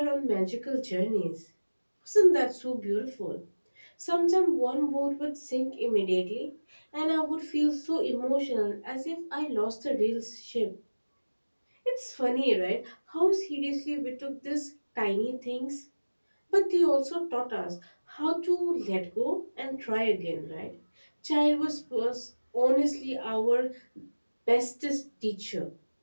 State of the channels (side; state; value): both; inverted; correlation -1.00